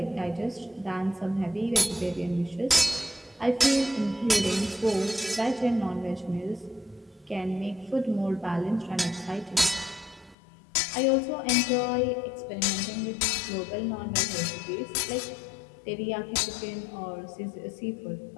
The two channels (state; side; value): drops out; right; at 10.4 s